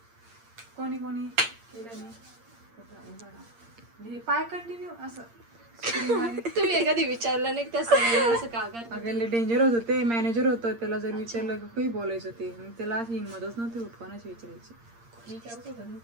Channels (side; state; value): left; late; 8.7 ms